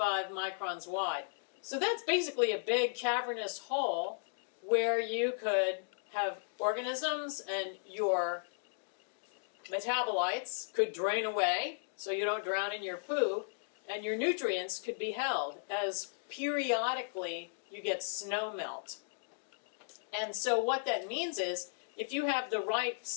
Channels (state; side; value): silent; right; digital silence